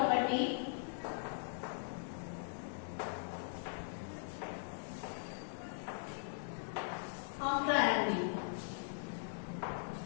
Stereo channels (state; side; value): silent; right; digital silence